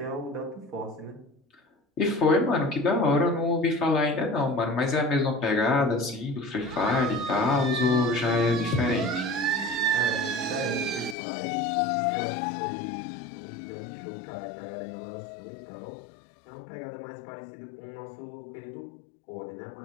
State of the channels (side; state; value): right; drops out; at 11.2 s